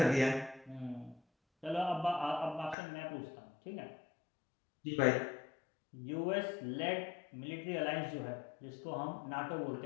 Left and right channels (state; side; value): drops out; right; at 2.8 s